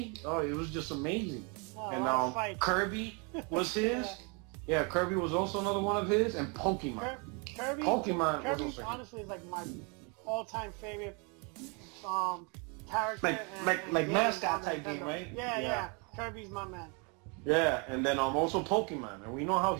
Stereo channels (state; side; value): quieter; left; 33.6 dB